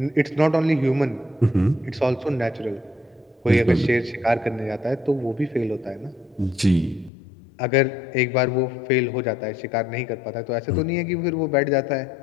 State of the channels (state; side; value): drops out; right; at 7.1 s